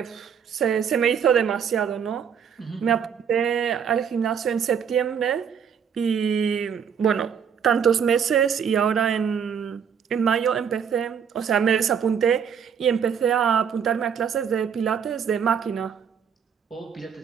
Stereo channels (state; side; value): quieter; left; 7.4 dB